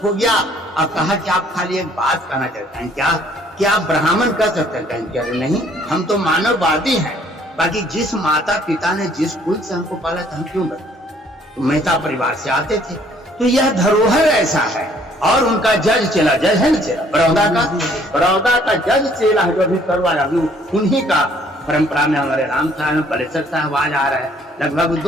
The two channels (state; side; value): normal; both; correlation 0.61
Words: हो गया और कहा कि आप खाली एक बात कहना चाहते हैं क्या आप ब्राह्मण कह सकते हैं? कहें क्या नहीं, हम तो मानववादी हैं। बाकी जिस माता पिता ने जिस कुल से हमको पाला था, हम क्यों बने? तो मेहता परिवार से आते थे। तो यह धरोहर ऐसा है। और उनका जज चेला, जज है ना चेला, बड़ौदा का जज चेला जो अभी करवाया, अभी उन्हीं का परंपरा में हमारे राम साहब पलेसर साहब आज आ रहा है, लगभग